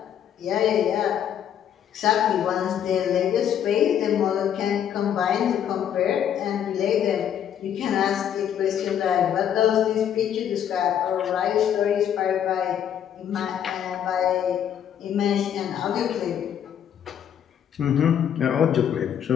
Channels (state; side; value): quieter; right; 9.4 dB